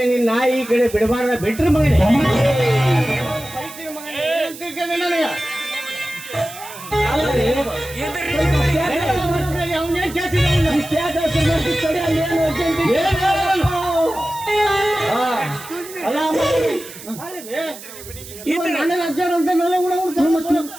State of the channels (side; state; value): right; noise; hiss, 15 dB below the sound